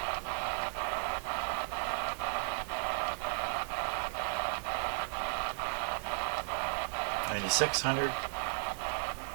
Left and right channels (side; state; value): left; silent; 54 dB below the other